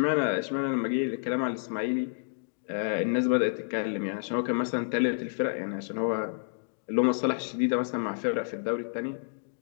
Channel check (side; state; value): right; silent; digital silence